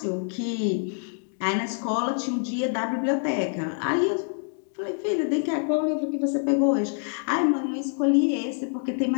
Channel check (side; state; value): right; silent; 61 dB below the other